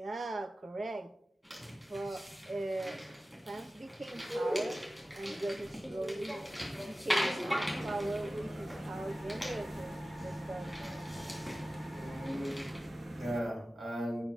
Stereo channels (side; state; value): both; normal; correlation 0.96